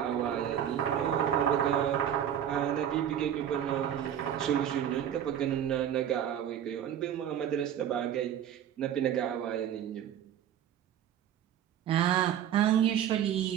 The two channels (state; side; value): quieter; left; 9.9 dB